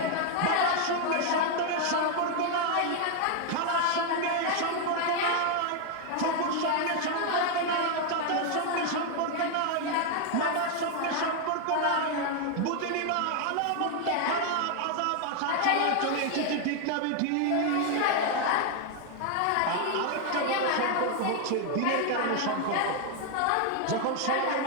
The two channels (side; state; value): both; different; correlation 0.00